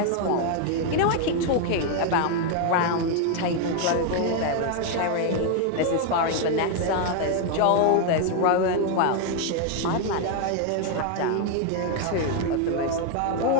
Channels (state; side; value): different; both; correlation 0.00